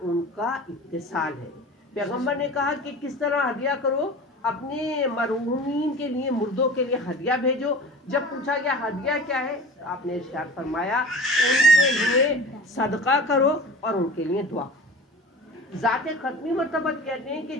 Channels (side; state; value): both; normal; correlation 0.38